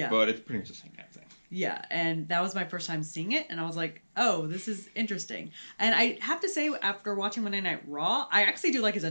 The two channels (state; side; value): inverted; both; correlation -1.00